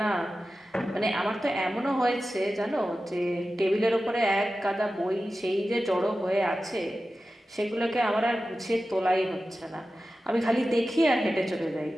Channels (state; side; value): normal; both; correlation 0.94